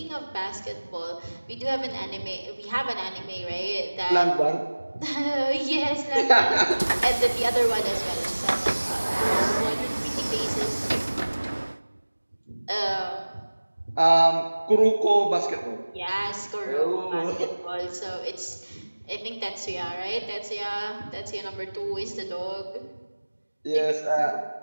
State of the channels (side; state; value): both; inverted; correlation -1.00